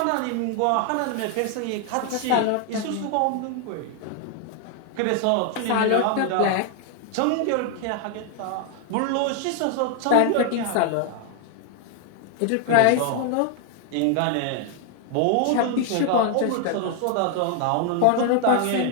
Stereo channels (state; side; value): different; both; correlation 0.00